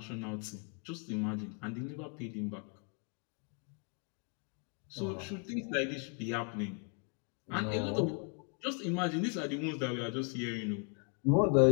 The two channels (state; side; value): quieter; right; 38.4 dB